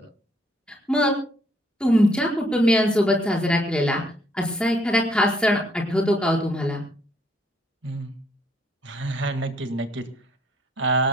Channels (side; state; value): both; normal; correlation 0.67